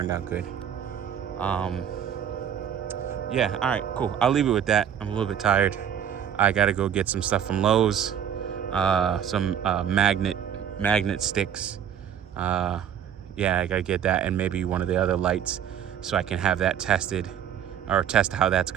out good. Yeah, all right, cool. I'll leave it with that. I'm a little bit tired. I gotta go get some stuff from Lowe's, some magnet sticks. Yeah, I gotta get that, and maybe one of the other lights, so I can have that tested, or test how that's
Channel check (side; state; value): left; quieter; 9.0 dB